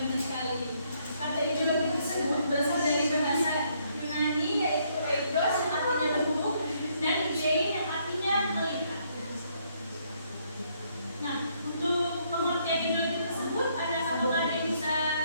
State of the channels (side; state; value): both; inverted; correlation -0.71